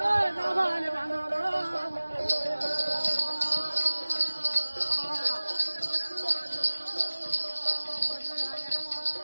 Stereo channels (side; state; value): both; inverted; correlation -1.00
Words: నా బాలి బంధువులు